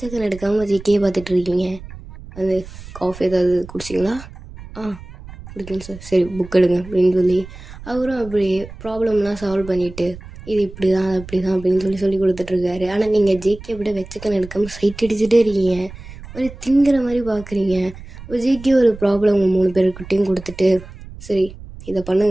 எடுக்காமல் ஜேக்கியே பார்த்துட்ருக்கீங்க. அது காஃபி ஏதாவது குடிச்சிங்களா? குடிக்கணும் சார். சரி புக் எடுங்க அப்படின்னு சொல்லி அவரும் அப்படியே ப்ராப்ளம்லாம் சால்வ் பண்ணிவிட்டு இது இப்படி தான் அப்படி தான் அப்படின்னு சொல்லி கொடுத்துட்ருக்காரு. ஆனால் நீங்கள் ஜேகே அப்படியே வெச்சக்கன் எடுக்காமல் சைட் அடிச்சுட்டே இருக்கீங்க, ஒரு திங்கிற மாதிரி பார்க்குறீங்க. ஜேகே ஒரு ப்ராப்ளம் உங்கள் 3 பேருக்கிட்டையும் கொடுத்துட்டு சரி இதை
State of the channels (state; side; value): noise; right; rumble, 16 dB below the sound